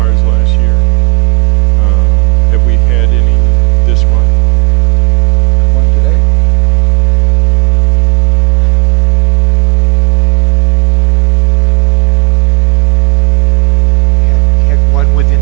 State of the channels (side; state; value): left; quieter; 26.1 dB